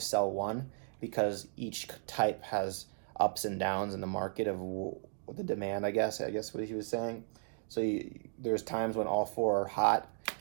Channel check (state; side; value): silent; left; digital silence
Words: sell one, because each type has ups and downs in the market of the demand, I guess what he was saying. So there's times when all 4 are hot,